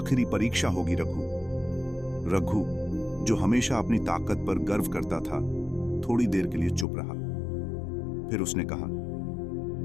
परीक्षा होगी। रघु, जो हमेशा अपनी ताकत पर गर्व करता था, थोड़ी देर के लिए चुप रहा। फिर उसने कहा,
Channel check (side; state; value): right; drops out; at 6.9 s